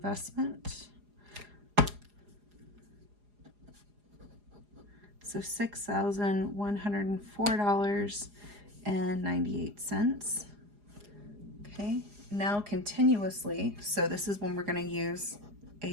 So $6,104.98. Okay, now continuously, so this is when we're going to use A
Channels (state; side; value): late; left; 4.8 ms